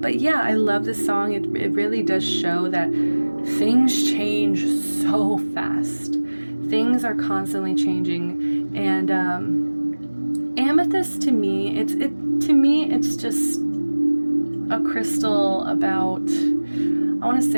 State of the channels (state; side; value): inverted; both; correlation -1.00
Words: yeah, I love this song. It really does show that things change so fast. Things are constantly changing. And amethyst, to me, it's just a crystal about, I want to